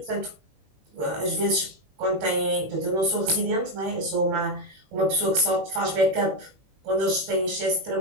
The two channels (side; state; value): left; late; 21 ms